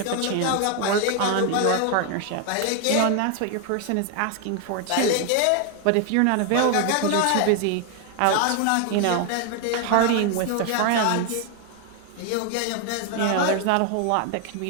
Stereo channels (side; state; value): both; different; correlation 0.00